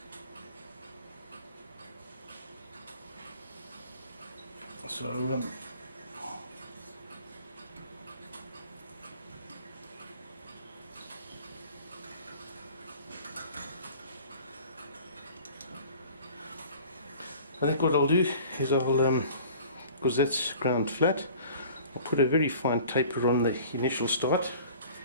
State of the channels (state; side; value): inverted; both; correlation -0.46